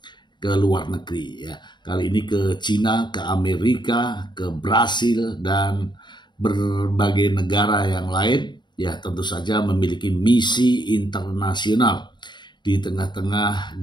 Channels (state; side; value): late; right; 0.22 ms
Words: ke luar negeri ya. Kali ini ke Cina, ke Amerika, ke Brasil dan berbagai negara yang lain ya, tentu saja memiliki misi internasional di tengah-tengah